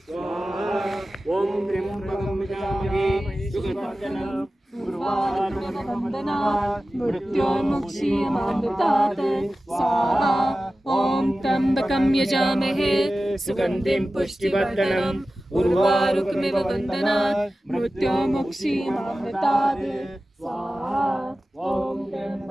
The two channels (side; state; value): both; normal; correlation 0.95